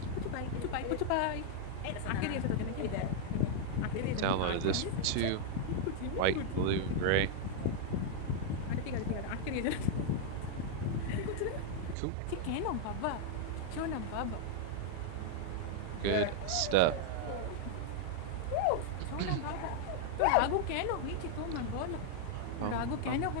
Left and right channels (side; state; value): both; different; correlation 0.00